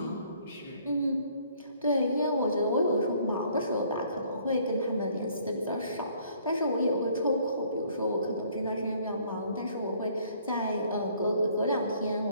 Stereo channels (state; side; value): inverted; both; correlation -0.61